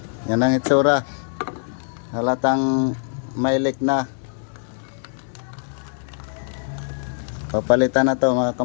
Yan ang itsura. Halatang may leak na. Papalitan na to mga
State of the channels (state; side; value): silent; right; digital silence